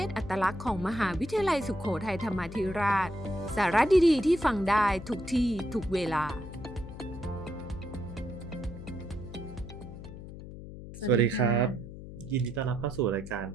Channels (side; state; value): left; noise; hum, 12 dB below the sound